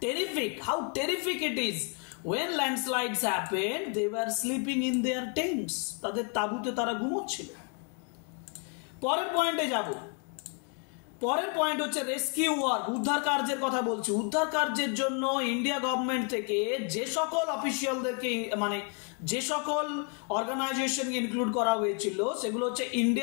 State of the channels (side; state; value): right; quieter; 39.3 dB